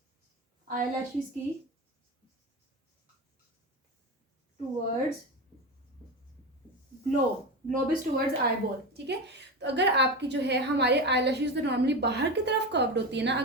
आईलैशेस की towards globe is towards eye ball. ठीक है, तो अगर आपकी जो है हमारे आईलैशेस तो नॉर्मली बाहर की तरफ कर्व्ड होती है ना,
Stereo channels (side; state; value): both; normal; correlation 0.21